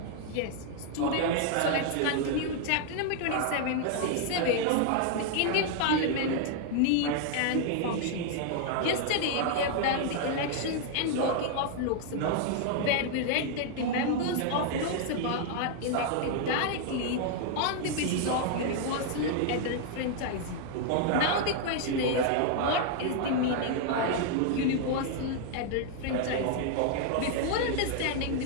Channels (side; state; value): both; different; correlation 0.00